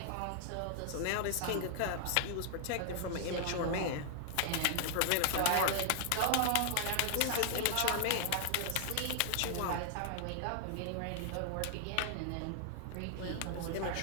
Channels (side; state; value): both; different; correlation 0.00